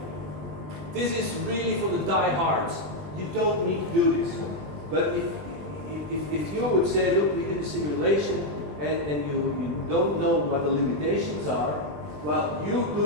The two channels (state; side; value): late; left; 20 ms